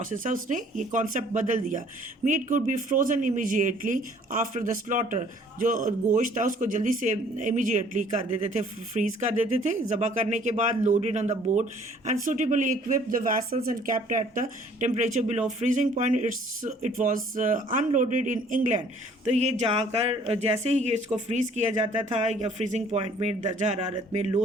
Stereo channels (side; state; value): both; normal; correlation 0.57